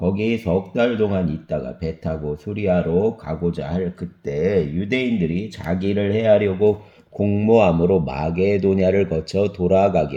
석 달 동안 있다가 배 타고 수리아로 가고자 할 그때 유대인들이 자기를 해하려고 공모함으로 마게도냐를 거쳐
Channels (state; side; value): identical; both; correlation 1.00